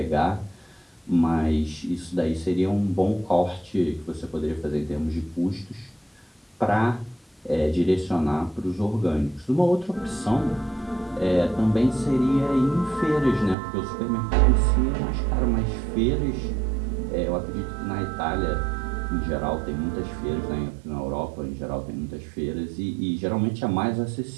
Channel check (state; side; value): drops out; left; at 13.6 s